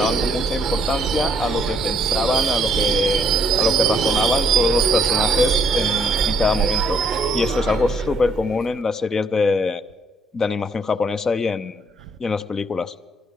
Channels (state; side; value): normal; both; correlation 0.68